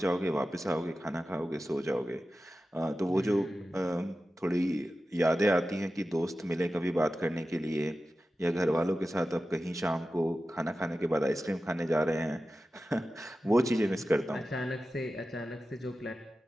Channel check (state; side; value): normal; both; correlation 0.93